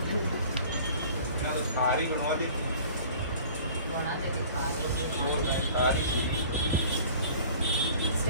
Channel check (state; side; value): inverted; both; correlation -0.46